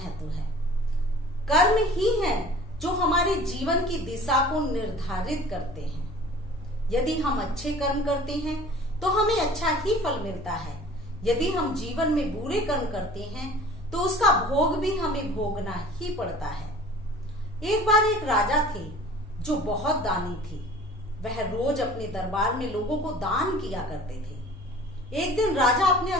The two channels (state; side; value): normal; both; correlation 0.46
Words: है। कर्म ही हैं जो हमारे जीवन की दिशा को निर्धारित करते हैं। यदि हम अच्छे कर्म करते हैं तो हमें अच्छा ही फल मिलता है। यदि हम जीवन में बुरे कर्म करते हैं तो उसका भोग भी हमें भोगना ही पड़ता है। एक बार एक राजा थे जो बहुत दानी थे। वह रोज अपने दरबार में लोगों को दान किया करते थे। एक दिन राजा अपने